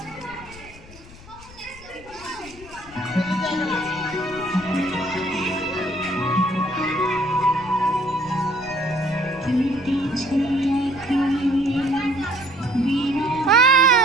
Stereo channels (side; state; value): left; noise; rumble, 20 dB below the sound